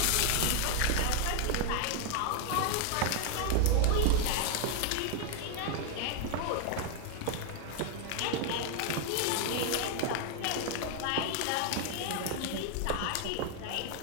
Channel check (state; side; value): different; both; correlation 0.00